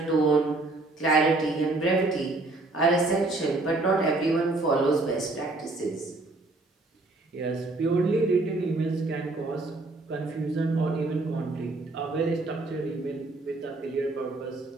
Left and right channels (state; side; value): quieter; left; 3.1 dB